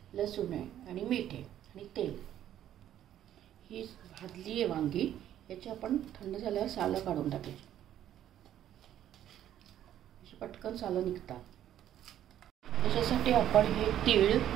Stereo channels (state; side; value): quieter; left; 11.4 dB